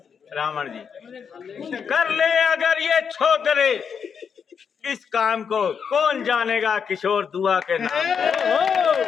रावण जी, कर ले अगर ये छोकरे इस काम को, कौन जानेगा किशोर दुआ के नाम।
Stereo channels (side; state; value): right; quieter; 6.7 dB